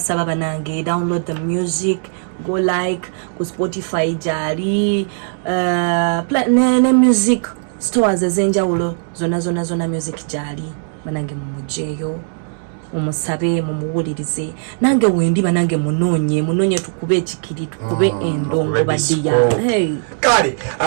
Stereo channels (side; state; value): left; silent; 66 dB below the other